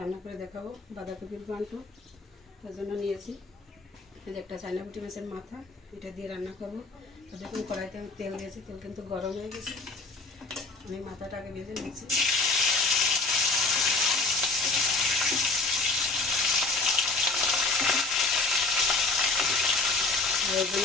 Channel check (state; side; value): quieter; right; 3.6 dB